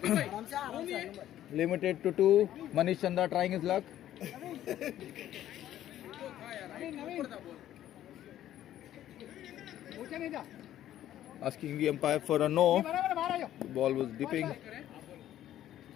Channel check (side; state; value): right; quieter; 12.3 dB